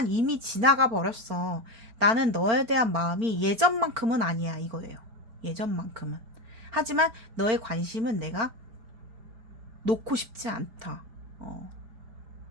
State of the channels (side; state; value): left; late; 4.4 ms